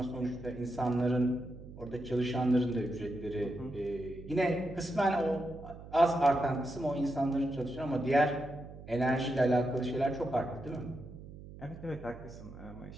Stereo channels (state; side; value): noise; right; hum, 15 dB below the sound